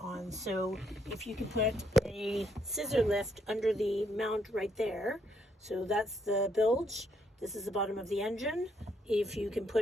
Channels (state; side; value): normal; both; correlation 0.73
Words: So if you can put a scissor lift under the mount right there, so that's the bilge, this is the bottom of the engine. If you can